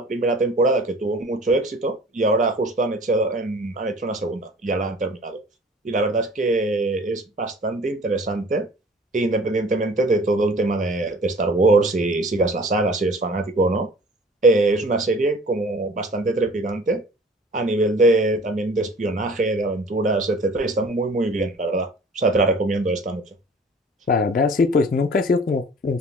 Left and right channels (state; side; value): normal; both; correlation 0.48